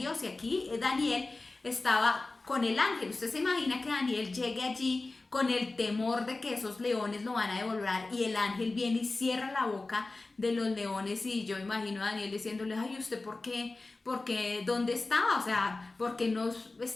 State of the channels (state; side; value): quieter; right; 3.3 dB